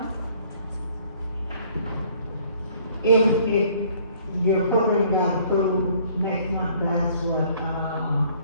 If your program got approved next month, that's what,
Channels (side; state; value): both; inverted; correlation -0.59